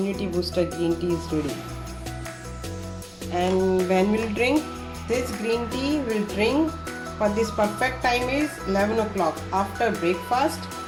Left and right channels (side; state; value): both; identical; correlation 1.00